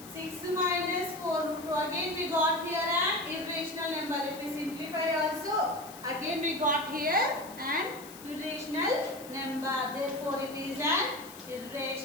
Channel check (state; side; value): noise; left; hiss, 17 dB below the sound